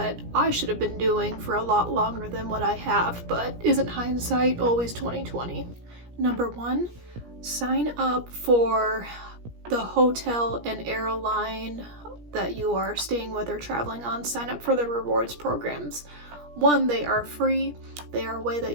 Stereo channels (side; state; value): left; late; 17 ms